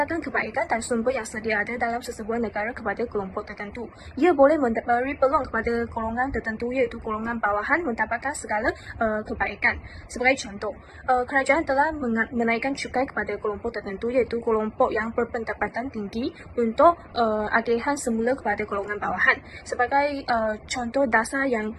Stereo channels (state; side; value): identical; both; correlation 1.00